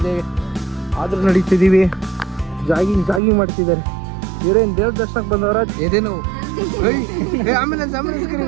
ಆದರೂ ನಡೀತಿದ್ದೀವಿ. ಜಾಗಿಂಗ್ ಮಾಡ್ತಿದ್ದಾರೆ. ಇವರೇನು ದೇವ್ರ ದರ್ಶನಕ್ಕೆ ಬಂದವರ ಎದೇನು ಆಂಬುಲೆನ್ಸ್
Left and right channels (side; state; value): left; drops out; at 3.2 s